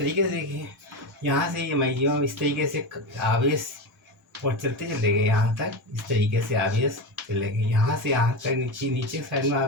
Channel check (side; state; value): both; normal; correlation 0.19